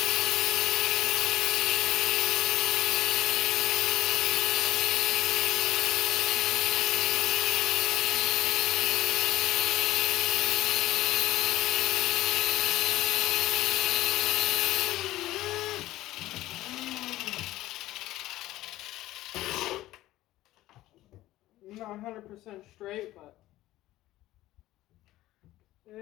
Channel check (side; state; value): right; quieter; 15.9 dB